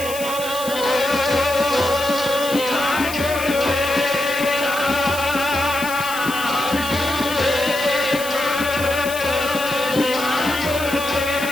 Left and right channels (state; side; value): noise; left; hiss, 10 dB below the sound